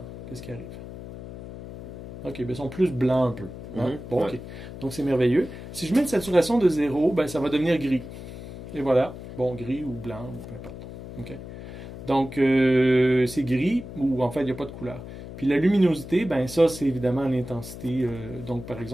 Qu'est-ce qui arrive? OK, bien, ils sont plus blancs un peu. Hein? Bon, OK. Donc, c'est merveilleux. Si je mets une saturation de 0, ben, ça va devenir gris. Et voilà. Bon, gris ou blanc, ou peu importe. OK. Donc, c'est gris, ou en fait, il n'y a pas de couleur. Puis la luminosité, ben ça, c'est évidemment l'intensité. Donc, par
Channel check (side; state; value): left; noise; hum, 12 dB below the sound